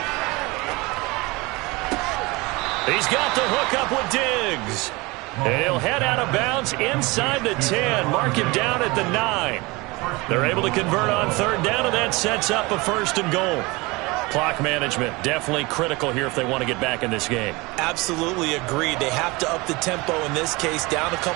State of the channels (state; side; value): quieter; left; 24.0 dB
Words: He's got the hook up with Diggs. And he'll head out of bounds inside the 10. Mark him down at the 9. They're able to convert on 3rd down, and that sets up a 1st and goal. Clock management definitely critical here if they want to get back in this game. Absolutely agreed. They have to up the tempo in this case, down a